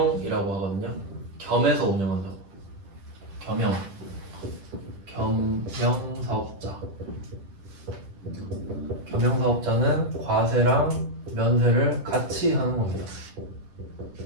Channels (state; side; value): late; left; 10 ms